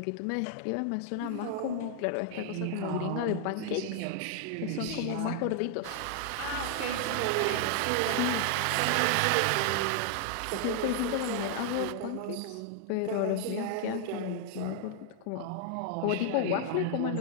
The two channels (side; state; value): both; different; correlation 0.00